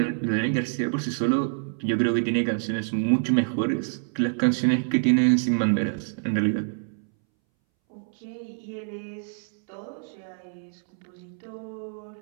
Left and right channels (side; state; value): left; silent; 61 dB below the other